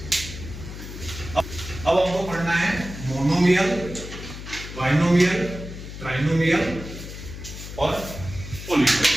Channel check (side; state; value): left; noise; hum, 11 dB below the sound